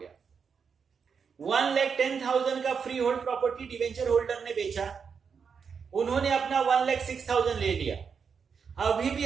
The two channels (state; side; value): quieter; left; 6.2 dB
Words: 1,10,000 का free hold property debenture holder ने बेचा, उन्होंने अपना 1,06,000 ले लिया. अभी भी